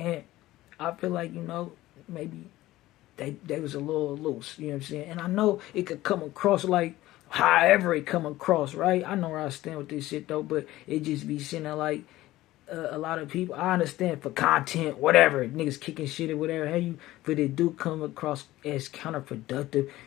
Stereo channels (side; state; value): right; quieter; 16.5 dB